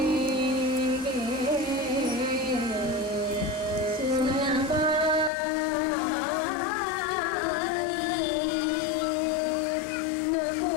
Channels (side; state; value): right; drops out; at 5.3 s